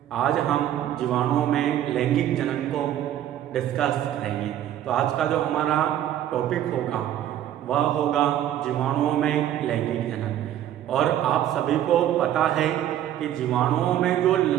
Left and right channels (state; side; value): quieter; left; 11.6 dB